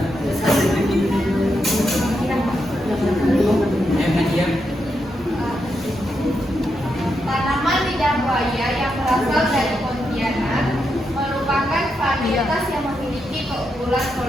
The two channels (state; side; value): normal; both; correlation 0.83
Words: Nadia. Tanaman lidah buaya yang berasal dari Pontianak merupakan varietas yang memiliki keunggulan